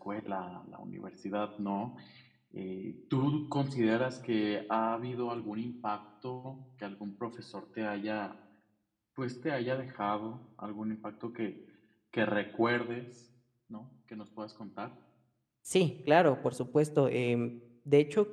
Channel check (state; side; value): identical; both; correlation 1.00